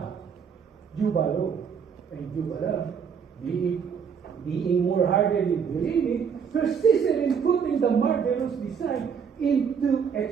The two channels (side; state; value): left; quieter; 6.8 dB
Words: and Jubala, being more hardly believing, persisted in putting putting the murderous design into